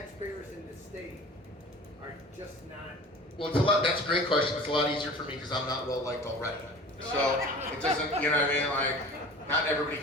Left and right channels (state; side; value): normal; both; correlation 0.41